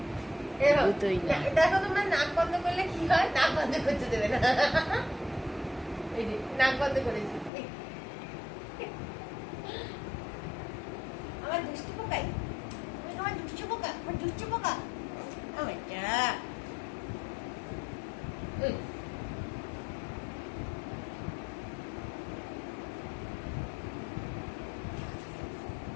দুটোই না। দেখো তোমরা নাক বন্ধ করলে কি হয়, নাক বন্ধ করতে দেবে না। এই যে নাক বন্ধ করেছি। আমার দুষ্টু পোকাই, আমার দুষ্টু পোকা, আমার দুষ্টু পোকা।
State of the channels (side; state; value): right; drops out; at 7.5 s